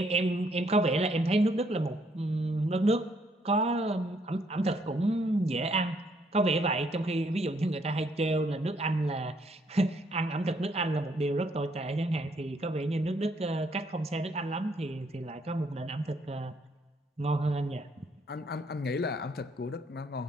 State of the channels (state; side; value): normal; both; correlation 0.69